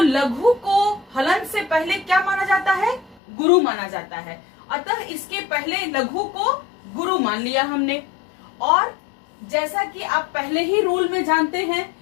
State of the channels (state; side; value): drops out; right; at 3.2 s